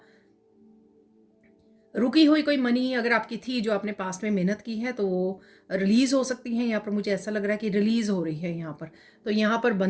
रुकी हुई कोई मनी अगर आपकी थी जो आपने पास्ट में मेहनत की है तो वो रिलीज़ हो सकती है। यहाँ पर मुझे ऐसा लग रहा है कि रिलीज़ हो रही है यहाँ पर, तो यहाँ पर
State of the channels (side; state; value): both; identical; correlation 1.00